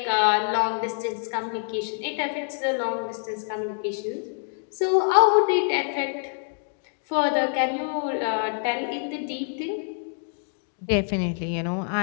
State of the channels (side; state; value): right; silent; digital silence